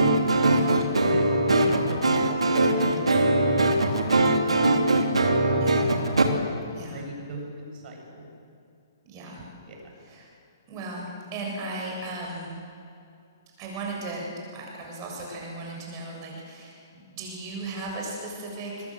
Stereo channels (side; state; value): both; inverted; correlation -0.72